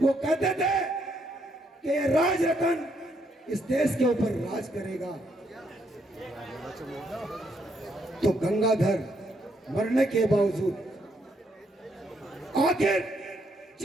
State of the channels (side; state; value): both; normal; correlation 0.74